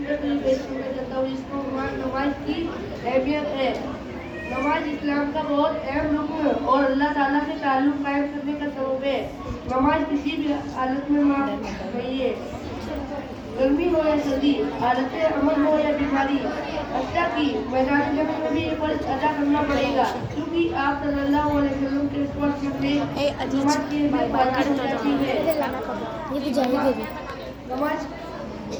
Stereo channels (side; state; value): both; identical; correlation 1.00